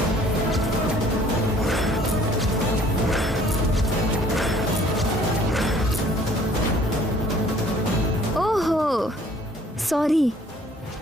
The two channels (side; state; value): both; normal; correlation 0.56